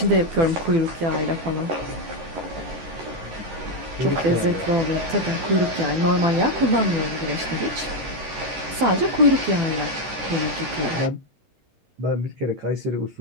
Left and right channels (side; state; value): left; late; 12 ms